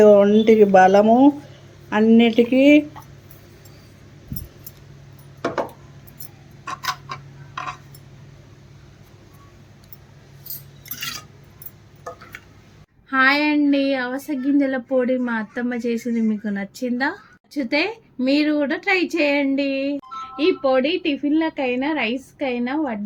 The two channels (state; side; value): identical; both; correlation 1.00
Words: ఒంటికి బలము అన్నిటికీ. హాయ్ అండి, అవస గింజల పొడి మా అత్తమ్మ చేసింది మీకు నచ్చిందా? నచ్చితే మీరు కూడా ట్రై చేయండి. ఈ పొడి టిఫిన్లకైనా రైస్కైనా